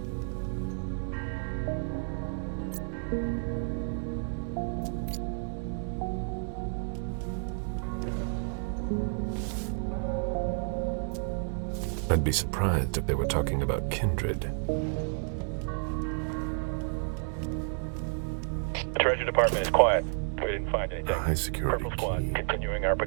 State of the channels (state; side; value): silent; left; 57 dB below the other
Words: I'd be surprised if they were talking about kindred. The Treasury Department is quiet. We didn't find anything. A high security Purple Squad continuing our